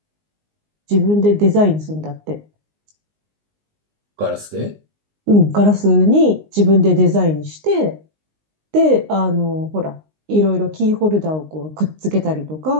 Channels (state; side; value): late; left; 19 ms